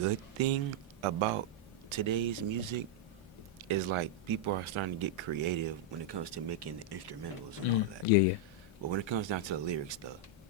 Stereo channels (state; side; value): normal; both; correlation -0.04